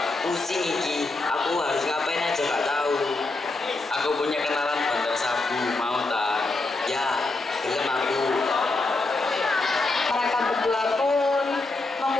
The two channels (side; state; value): right; quieter; 3.3 dB